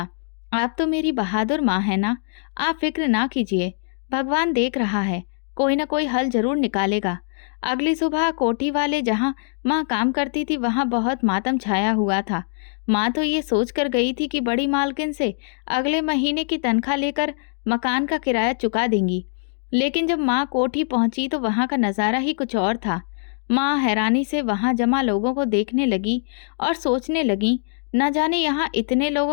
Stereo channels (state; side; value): silent; right; digital silence